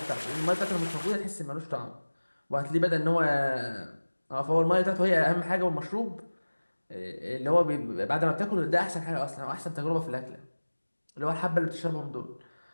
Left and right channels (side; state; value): both; inverted; correlation -1.00